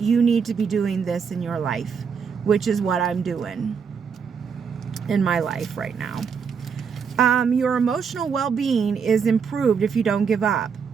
need to be doing this in your life, which is what I'm doing in my life right now. Your emotional well-being is improved if you don't give up.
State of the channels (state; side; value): quieter; left; 6.3 dB